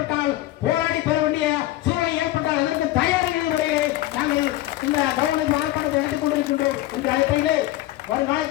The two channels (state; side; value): quieter; right; 16.1 dB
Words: போராடி பெற வேண்டிய சூழலை ஏற்பட்டால் அதற்கு தயாரிகள் முறையை நாங்கள் இந்த கவர்மெண்ட் ஆர்ப்பாட்டத்தை எடுத்துக் கொண்டிருக்கின்றோம். இந்த அடிப்படையிலே